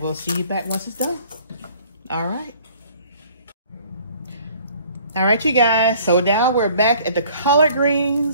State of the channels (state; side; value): inverted; both; correlation -0.54